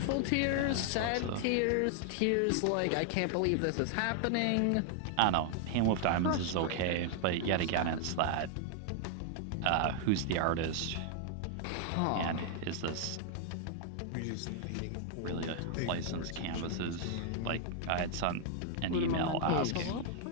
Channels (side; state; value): both; different; correlation 0.00